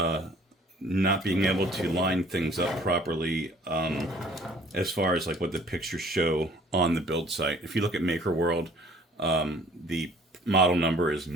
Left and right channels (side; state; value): both; normal; correlation 0.55